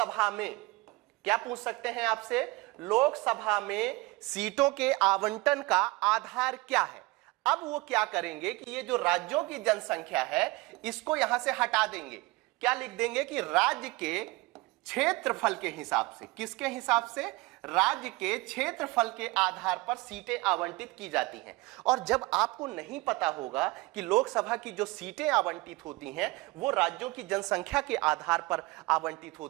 में, क्या पूछ सकते हैं आपसे, लोकसभा में सीटों के आवंटन का आधार क्या है। अब वो क्या करेंगे कि ये जो राज्यों की जनसंख्या है इसको यहां से हटा देंगे, क्या लिख देंगे कि राज्य के क्षेत्रफल के हिसाब से, किसके हिसाब से, राज्य के क्षेत्रफल के आधार पर सीटें आवंटित की जाती हैं। और जब आपको नहीं पता होगा कि लोकसभा की जो सीटें आवंटित होती हैं वो राज्यों की जनसंख्या के आधार पर आवंटित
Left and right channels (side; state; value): left; quieter; 22.4 dB